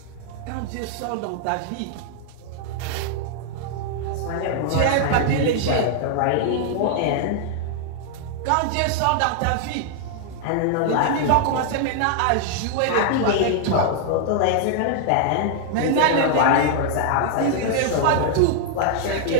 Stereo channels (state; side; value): different; both; correlation -0.01